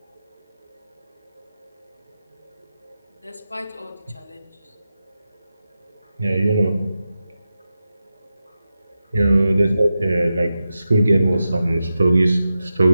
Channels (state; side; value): inverted; both; correlation -0.91